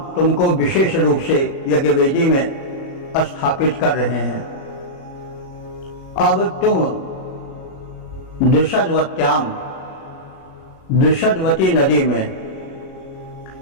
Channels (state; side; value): late; right; 37 ms